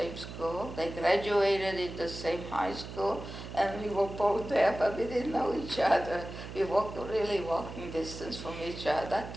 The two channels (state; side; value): noise; right; hum, 11 dB below the sound